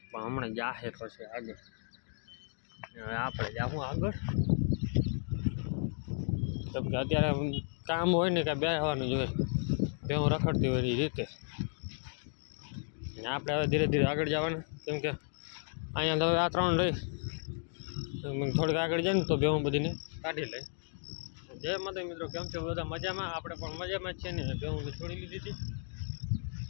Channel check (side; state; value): right; silent; 55 dB below the other